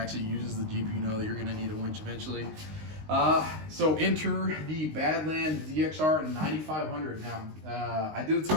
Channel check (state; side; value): late; left; 19 ms